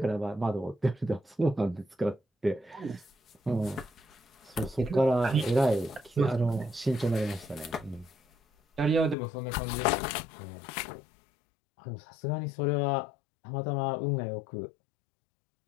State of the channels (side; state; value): right; drops out; at 9.2 s